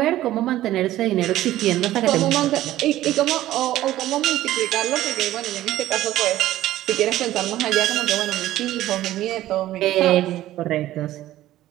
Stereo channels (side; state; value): left; quieter; 14.5 dB